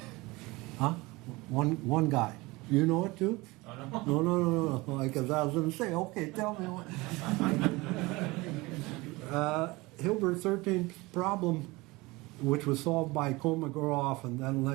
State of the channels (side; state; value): left; quieter; 22.5 dB